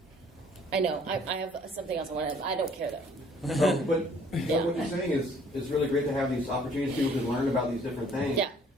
I know. I have something else I want to. I don't care though. But what you're saying is it's really great to have these opportunities. People can learn about these different things. Yeah.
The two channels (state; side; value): normal; both; correlation 0.58